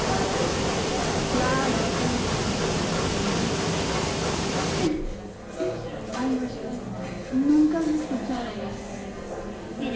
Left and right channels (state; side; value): identical; both; correlation 1.00